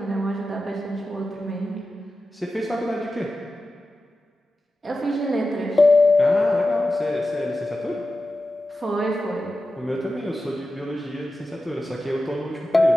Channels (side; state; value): both; normal; correlation 0.93